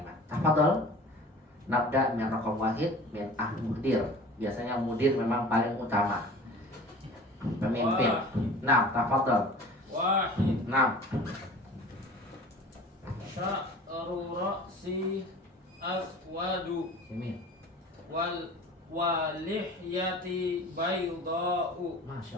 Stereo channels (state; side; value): normal; both; correlation 0.42